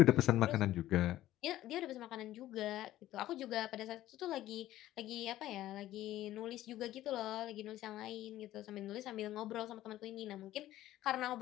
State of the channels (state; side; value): quieter; right; 14.4 dB